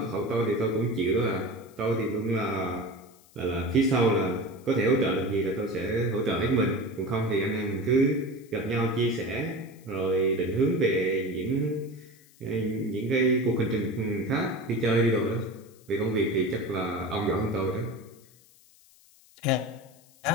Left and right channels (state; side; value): noise; left; hiss, 28 dB below the sound